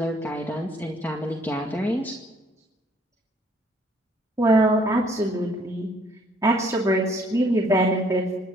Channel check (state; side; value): normal; both; correlation 0.62